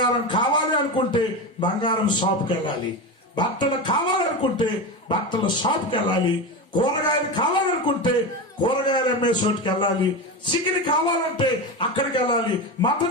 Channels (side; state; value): both; normal; correlation 0.21